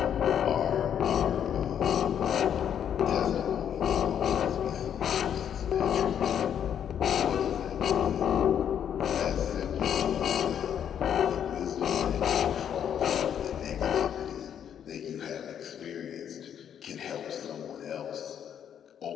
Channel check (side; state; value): right; quieter; 9.0 dB